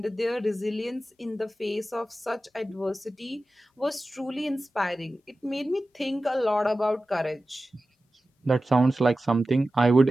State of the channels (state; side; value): normal; both; correlation 0.94